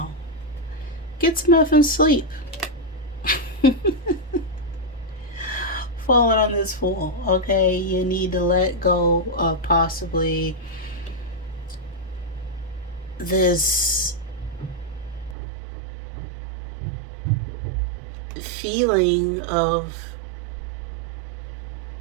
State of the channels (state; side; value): drops out; left; at 15.4 s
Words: Get some effing sleep. Falling on this Fool, okay? You need to let go of possibly this feeling of